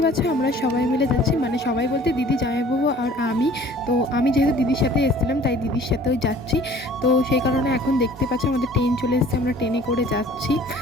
পাচ্ছ আমরা সবাই মিলে যাচ্ছি, মানে সবাই বলতে দিদি, জামাইবাবু আর আমি। তো আমি যেহেতু দিদির সাথে এসেছিলাম তাই দিদির সাথেও যাচ্ছি। তো সেই কারণে এখন দেখতে পাচ্ছ আমাদের ট্রেন চলে এসেছে, আমরা ট্রেনে করে যাচ্ছি।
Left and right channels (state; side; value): normal; both; correlation 0.50